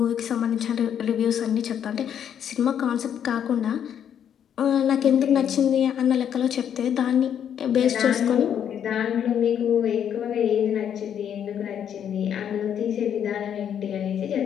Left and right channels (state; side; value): quieter; right; 9.0 dB